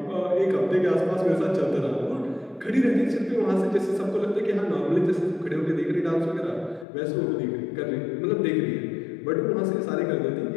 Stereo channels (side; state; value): right; drops out; at 6.9 s